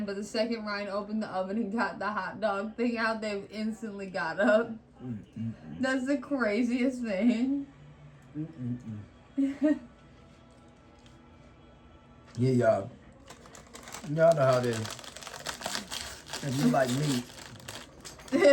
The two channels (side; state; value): both; identical; correlation 1.00